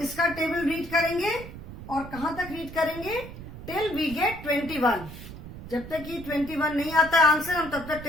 टेबल रीड करेंगे और कहां तक रीड करेंगे टिल वी गेट 21. जब तक ये 21 नहीं आता है आंसर हम तब तक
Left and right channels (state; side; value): noise; right; rumble, 13 dB below the sound